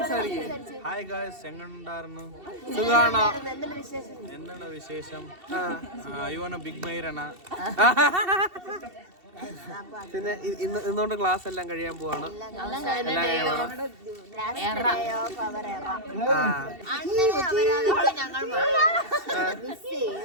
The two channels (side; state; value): left; late; 2.7 ms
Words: ഹായ് ഗായ്സ്, എങ്ങനെയുണ്ടായിരുന്നു? സുഖാണോ? എന്താണ് വിശേഷം? യുവന ബിഗ് മൈരന. പിന്നെ ഇന്നുകൊണ്ട് ക്ലാസ് എല്ലാം കഴിയാൻ പോവാണ്.